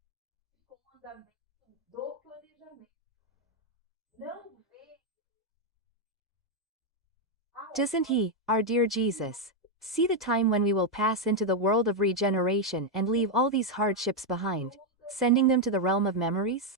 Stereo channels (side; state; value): both; normal; correlation 0.01